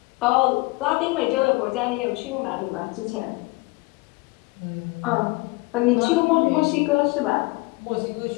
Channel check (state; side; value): quieter; right; 24.7 dB